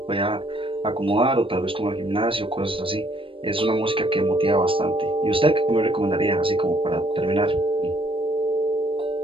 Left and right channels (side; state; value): left; late; 0.25 ms